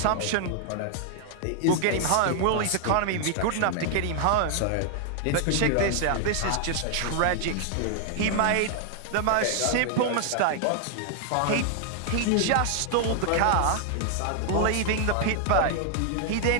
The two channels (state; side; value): different; both; correlation 0.00